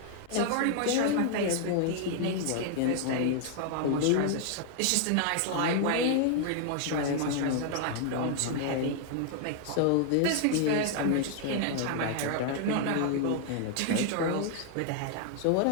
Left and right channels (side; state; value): both; different; correlation 0.00